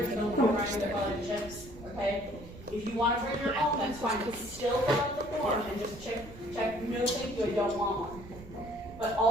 they'll give you a grinder, they'll buy chips. Okay, if you want to bring your own, that's fine. But still fill out the form and just check. No, thank you. I don't want one. But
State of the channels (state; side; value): noise; right; rumble, 16 dB below the sound